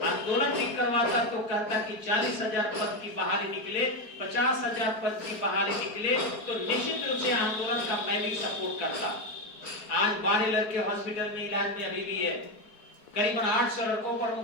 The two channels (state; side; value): late; right; 4.7 ms